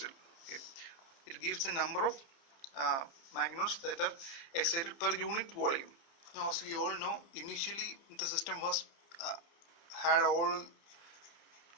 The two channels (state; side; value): late; right; 30 ms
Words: Okay, it gives the number of magnons that are excited per unit volume. Now as we all know, initially the system was had all